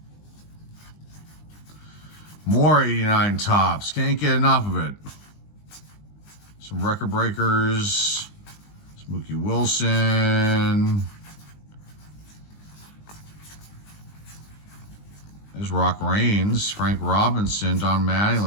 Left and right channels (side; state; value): right; late; 20 ms